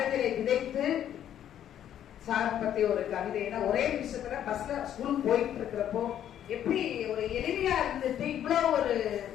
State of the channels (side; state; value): right; quieter; 10.5 dB